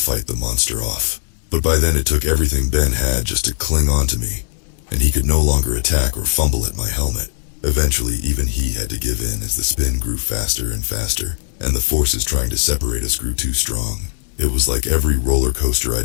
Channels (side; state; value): right; silent; digital silence